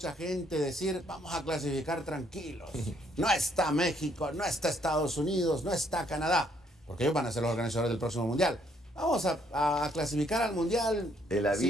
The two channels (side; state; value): both; normal; correlation 0.68